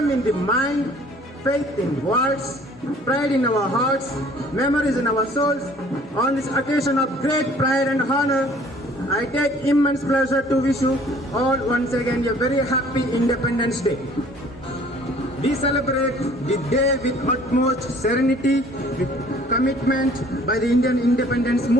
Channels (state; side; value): normal; both; correlation 0.54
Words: in the mind, faith in words, pride in our hearts, memories in our souls. On this occasion of great pride and honor, I take immense pleasure to wish you all once again a very happy Independence Day. We celebrate the day with utmost serenity, with commitment by the Indian independence